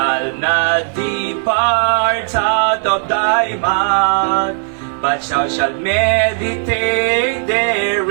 not depart out of thy mouth, but thou shalt meditate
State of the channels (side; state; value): left; silent; digital silence